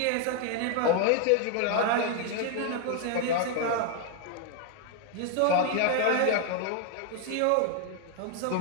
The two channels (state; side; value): different; both; correlation 0.00